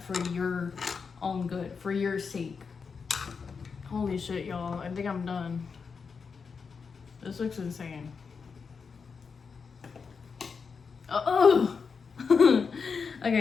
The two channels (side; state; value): right; quieter; 5.5 dB